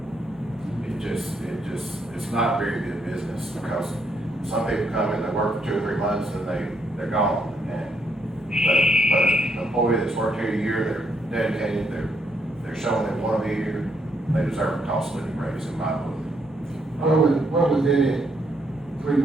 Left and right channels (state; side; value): normal; both; correlation 0.74